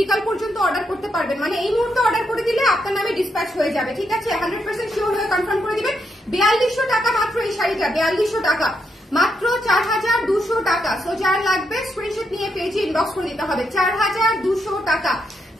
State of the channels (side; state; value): both; normal; correlation 0.81